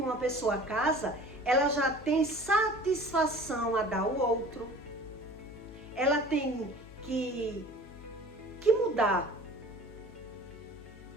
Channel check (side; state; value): left; noise; hum, 19 dB below the sound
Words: pessoa casa, ela já tem satisfação a dar ao outro. Ela tem que mudar.